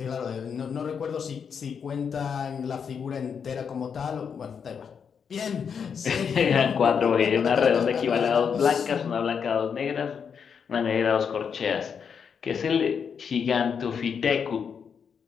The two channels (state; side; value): quieter; right; 6.8 dB